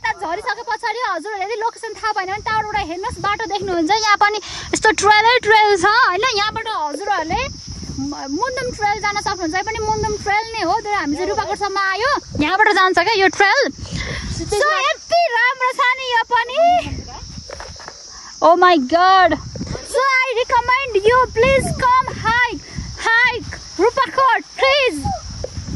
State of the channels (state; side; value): identical; both; correlation 1.00